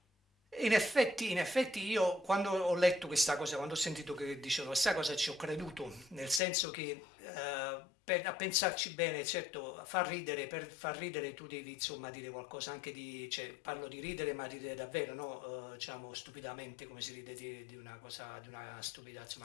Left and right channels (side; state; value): right; drops out; at 6.4 s